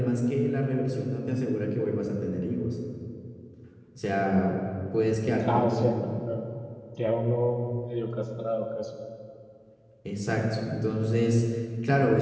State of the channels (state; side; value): identical; both; correlation 1.00